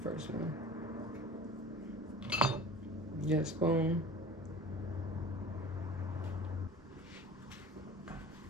first one. Get a spoon.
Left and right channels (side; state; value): both; normal; correlation 0.40